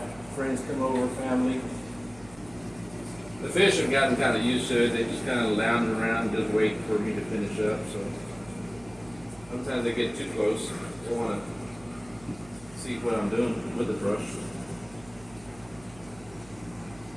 friends come over, family. The fish have gotten kind of used to it. They just kind of lounge around and just wait for me to finish up. So sometimes they get too close. They want to see what I'm doing with the brush.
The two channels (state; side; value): noise; right; hum, 21 dB below the sound